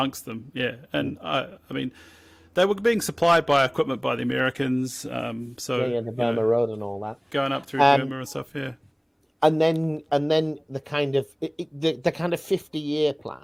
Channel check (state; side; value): identical; both; correlation 1.00